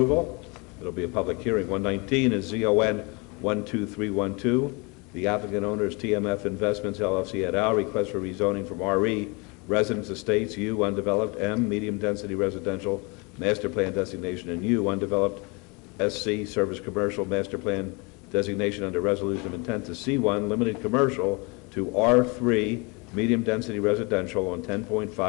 It'll be a public hearing. 119 is ZON 12312. The applicant owner is TMF Investments LLC et al. Request for rezoning from RE, Residence Estates, U, undeveloped, M, medium density residential, master plan designation, and U, undeveloped, SC, service commercial, master plan designation under resolution of intent to C1, limited commercial, to R3, medium density residential on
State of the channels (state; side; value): quieter; right; 29.1 dB